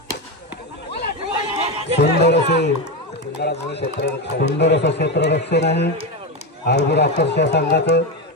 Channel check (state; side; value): normal; both; correlation 0.13